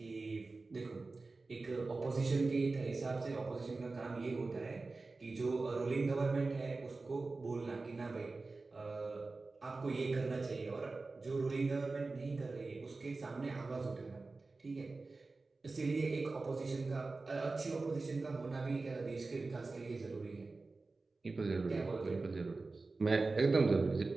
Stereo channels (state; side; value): quieter; left; 3.6 dB